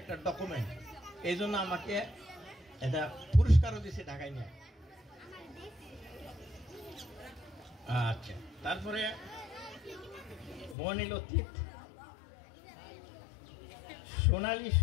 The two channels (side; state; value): right; drops out; at 10.8 s